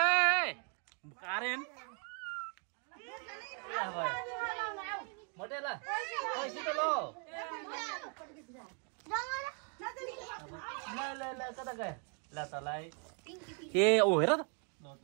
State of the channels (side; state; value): left; quieter; 39.8 dB